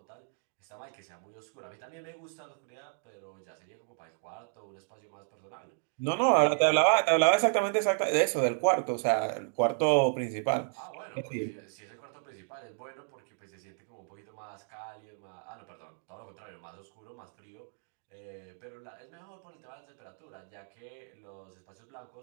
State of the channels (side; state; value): left; silent; digital silence